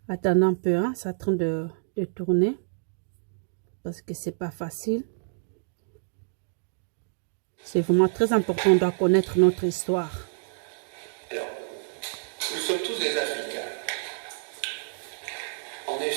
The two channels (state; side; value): silent; left; digital silence